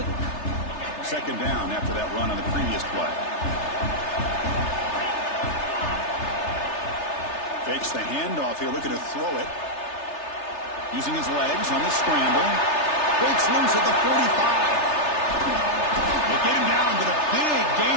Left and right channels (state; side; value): late; right; 3.3 ms